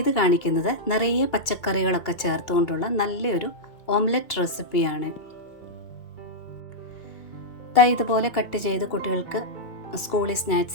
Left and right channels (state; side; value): late; right; 2.3 ms